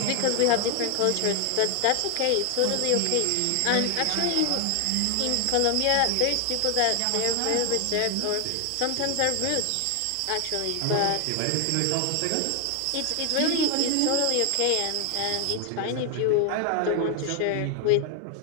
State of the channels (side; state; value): both; different; correlation 0.00